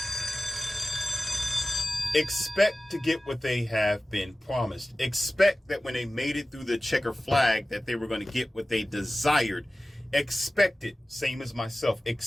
Expect to get what they have been promised. Expect that when they made it through the checker flag that they were going to get what they desired. Expect it, same as myself,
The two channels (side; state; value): both; normal; correlation 0.96